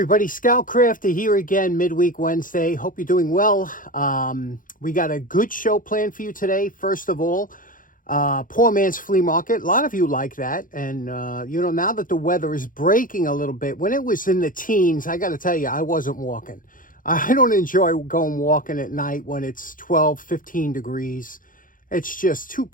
Scoutcrafter here again, midweek Wednesday. Hope you're doing well. We got a good show planned for you today. First of all, Poor Man's Flea Market. A lot of you like that. And, now that the weather is breaking a little bit, when it was in the teens, I got to tell you, I wasn't walking. I don't enjoy going walking at night when it's 12, 15 degrees. It's just too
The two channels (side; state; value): right; late; 0.39 ms